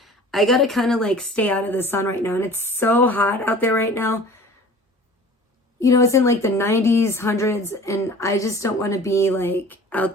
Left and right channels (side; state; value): both; normal; correlation 0.44